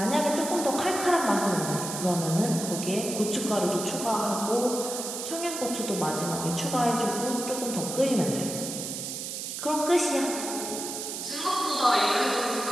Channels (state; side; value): noise; right; hiss, 6 dB below the sound